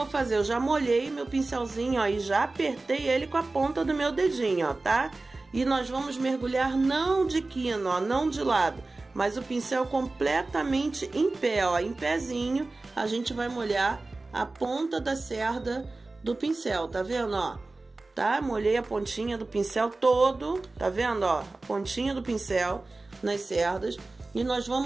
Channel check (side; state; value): left; quieter; 3.3 dB